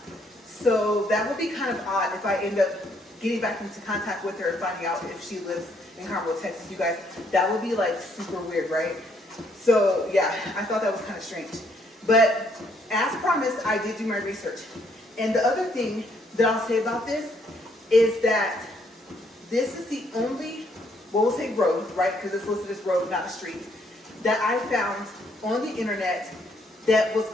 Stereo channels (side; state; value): both; normal; correlation 0.69